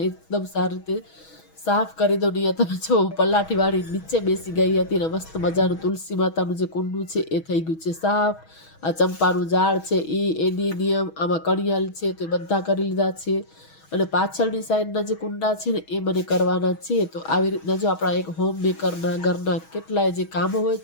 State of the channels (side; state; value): right; late; 6.2 ms